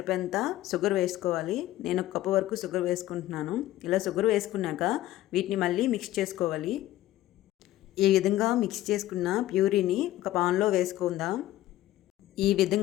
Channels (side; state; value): right; quieter; 14.9 dB